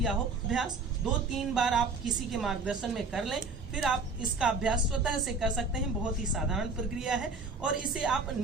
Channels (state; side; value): quieter; left; 3.9 dB